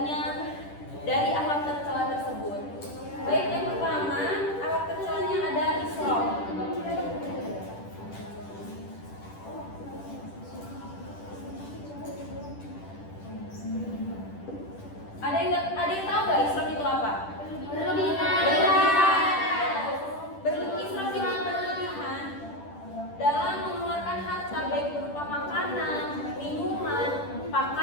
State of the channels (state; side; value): late; right; 10 ms